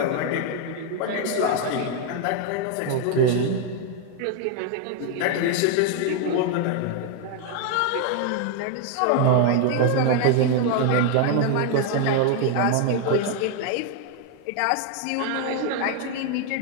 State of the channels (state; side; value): different; both; correlation 0.01